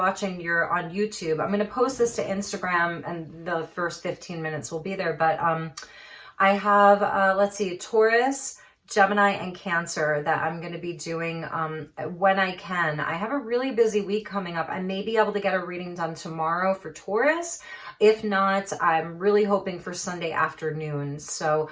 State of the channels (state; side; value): identical; both; correlation 1.00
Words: you're on YouTube. I'm going to post this to Instagram, and the first 15 minutes will be there. But I have, let's see, Taurus, Gemini, and Cancer that I'm going to be doing when I can. I have a really busy week coming up. I may be able to get a reading done tomorrow for Taurus. If not, I'm really hoping for Sunday afternoon. So